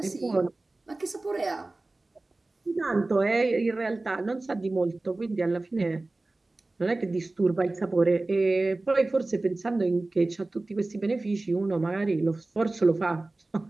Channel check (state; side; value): quieter; left; 3.0 dB